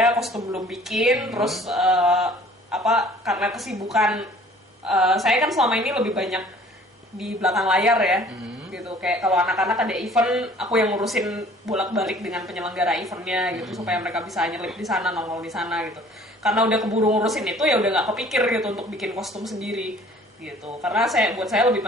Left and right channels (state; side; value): normal; both; correlation 0.52